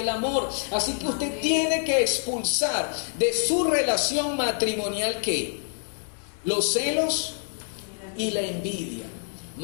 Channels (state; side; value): silent; right; 60 dB below the other